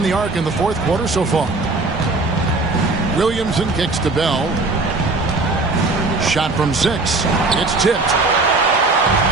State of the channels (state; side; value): quieter; left; 3.3 dB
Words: the arc in the 4th quarter so far. Williamson kicks to Bell. Shot from 6. It's tipped.